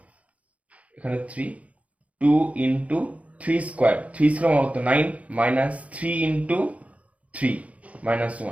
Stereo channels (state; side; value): late; left; 0.067 ms